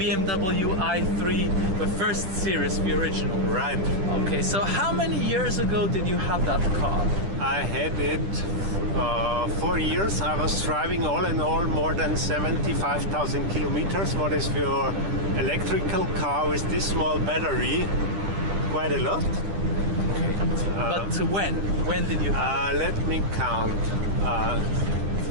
i3, the first series, the original. Right. Okay, so how many years ago did you have that car? I had it 4 years. I was driving all in all more than 75,000 kilometers. What is your electrical car with this small battery? Quite a lot. Okay. But when did you have it? Let me count.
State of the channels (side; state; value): left; late; 10 ms